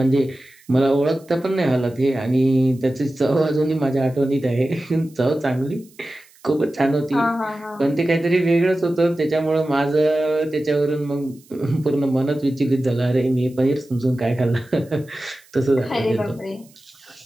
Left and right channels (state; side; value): noise; right; hiss, 28 dB below the sound